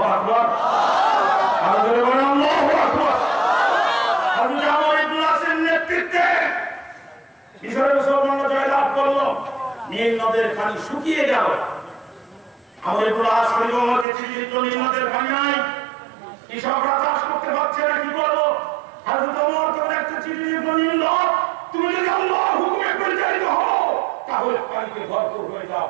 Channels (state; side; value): drops out; left; at 14.1 s